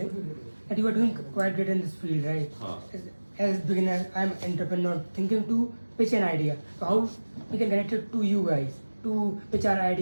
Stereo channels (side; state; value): both; inverted; correlation -1.00